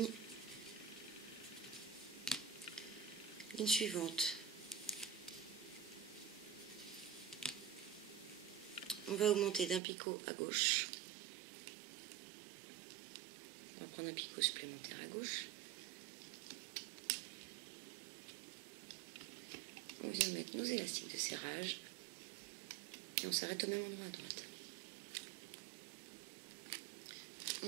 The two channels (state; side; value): drops out; left; at 9.8 s